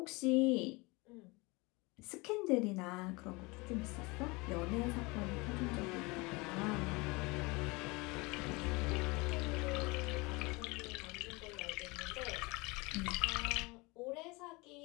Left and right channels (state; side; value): quieter; right; 25.6 dB